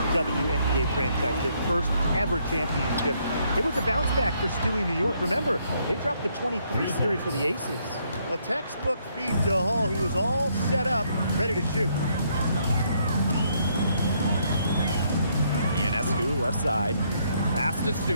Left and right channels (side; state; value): both; inverted; correlation -0.71